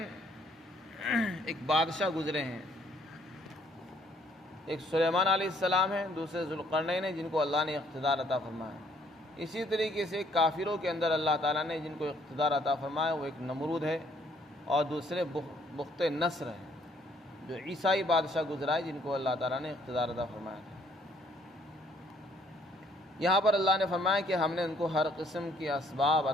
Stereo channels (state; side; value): normal; both; correlation 0.65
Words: ایک بادشاہ گزرے ہیں، ایک سلیمان علیہ السلام ہیں، دوسرے ذوالقرنین ہیں جن کو اللہ نے اقتدار عطا فرمایا۔ اسی طریقے سے کافروں کے اندر اللہ تعالیٰ نے جن کو اقتدار عطا فرمایا وہ ایک نمرود ہے اور دوسرے بخت نصر ہے، جو عیسائی بادشاہ گزرا ہے جن کو اللہ تعالیٰ نے اقتدار عطا فرمایا تھا۔ یہاں پر اللہ نے فرمایا کہ ہم نے ان کو ہر قسم کے اسباب